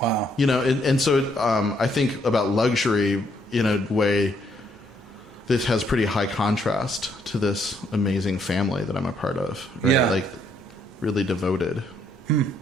And so I think about luxury in a way. This has pretty high contrast to this amazing family that I'm a part of, right? Yeah. Like really devoted.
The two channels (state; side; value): normal; both; correlation 0.71